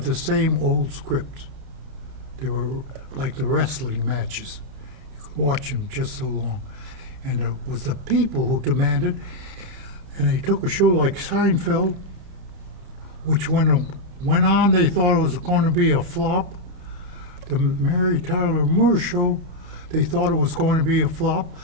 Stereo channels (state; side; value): late; left; 31 ms